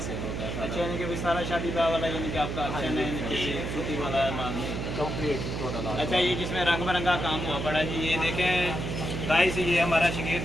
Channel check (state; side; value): noise; right; hum, 4 dB below the sound